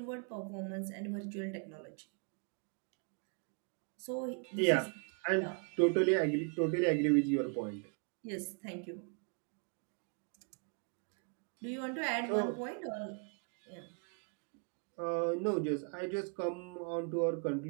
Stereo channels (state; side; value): quieter; left; 37.9 dB